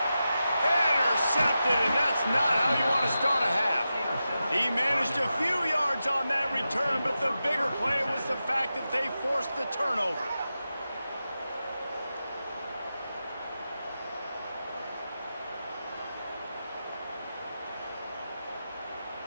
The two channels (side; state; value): both; inverted; correlation -0.91